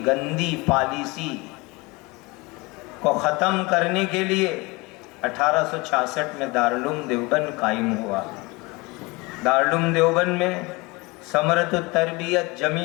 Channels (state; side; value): quieter; right; 24.9 dB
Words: گندی پالیسی کو ختم کرنے کے لیے 1866 میں دارالعلوم دیوبند قائم ہوا۔ دارالعلوم دیوبند میں ثمرۃ التربیت،